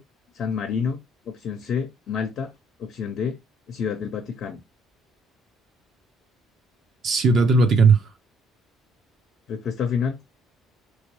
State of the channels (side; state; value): both; normal; correlation 0.66